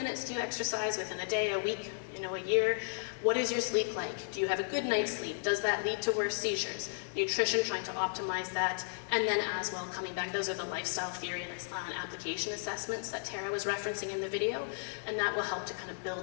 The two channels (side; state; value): right; silent; digital silence